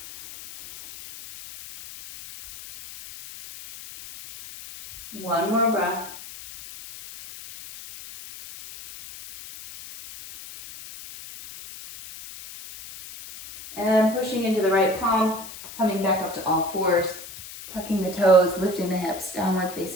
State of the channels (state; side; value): noise; left; hiss, 14 dB below the sound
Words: One more breath. And pushing into the right palm, coming back up to all fours, tucking the toes, lifting the hips, downward